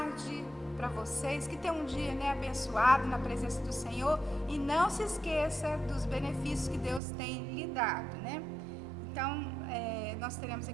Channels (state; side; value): drops out; left; at 7.0 s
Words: para vocês, que tenham um dia, né, abençoado na presença do Senhor, e não se esqueça dos benefícios que Deus tem lhe dado, né? Então, nós teremos